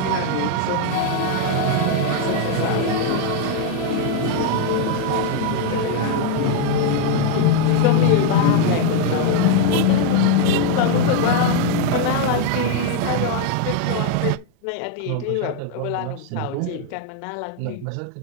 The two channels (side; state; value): both; different; correlation 0.01